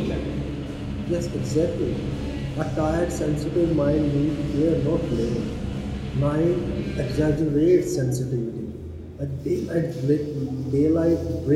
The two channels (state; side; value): identical; both; correlation 1.00